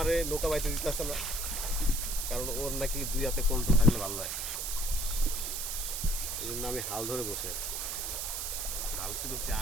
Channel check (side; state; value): right; noise; hiss, 2 dB below the sound